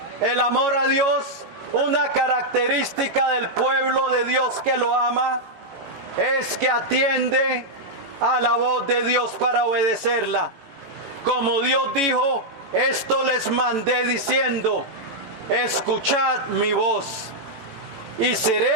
El amor a Dios, una característica del pueblo de Dios que lo ama, es que atiende a la voz de Dios para obedecerla. Como Dios dijo: esto les mandé diciendo: escuchad mi voz. y seré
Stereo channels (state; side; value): late; left; 18 ms